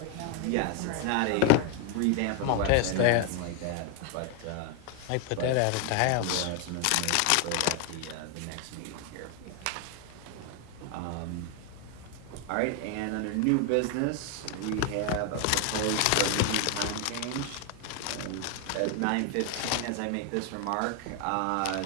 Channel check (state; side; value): different; both; correlation 0.01